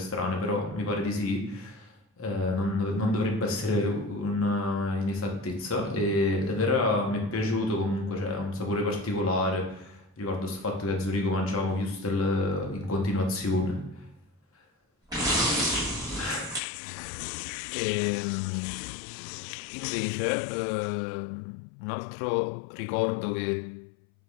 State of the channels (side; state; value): right; drops out; at 16.6 s